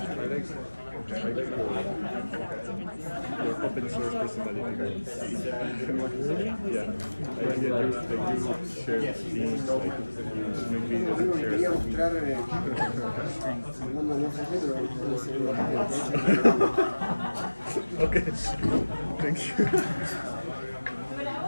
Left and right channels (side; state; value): both; inverted; correlation -1.00